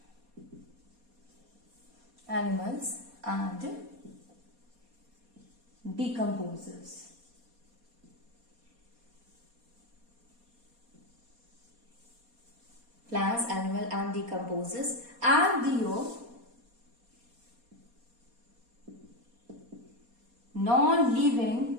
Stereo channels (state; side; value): late; left; 4.2 ms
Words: Animals and decomposers. Plants, animal and decomposers, and the non-living